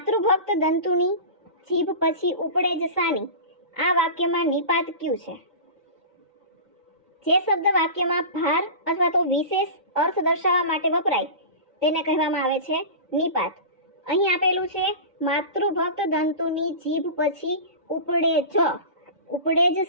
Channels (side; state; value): both; inverted; correlation -0.31